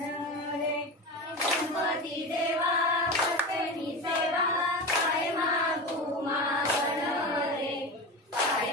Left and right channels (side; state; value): both; normal; correlation 0.25